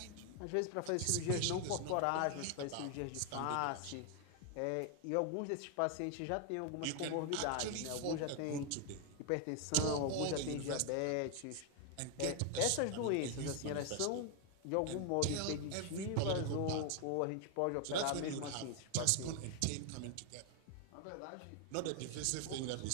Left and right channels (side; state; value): both; different; correlation 0.00